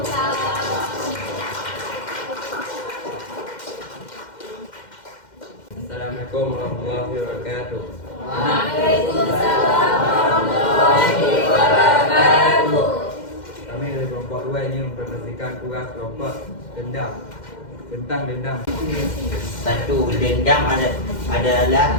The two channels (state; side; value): late; right; 2.1 ms